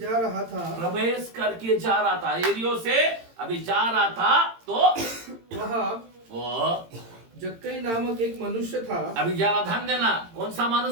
रहा था। यरीहो से अभी जा रहा था तो वहाँ वो जक्कई नामक एक मनुष्य था। अभी जरा ध्यान देना, कौन सा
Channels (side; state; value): left; late; 18 ms